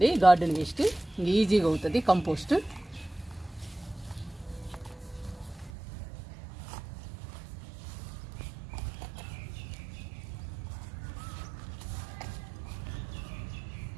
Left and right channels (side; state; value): left; drops out; at 5.7 s